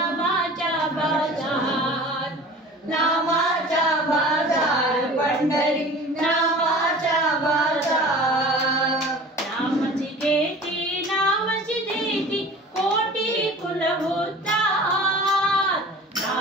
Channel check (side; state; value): both; normal; correlation 0.41